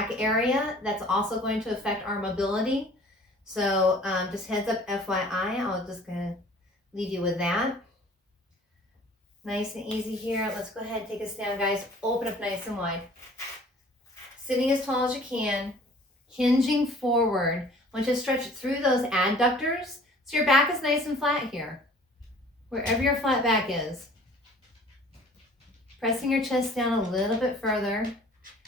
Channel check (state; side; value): normal; both; correlation 0.50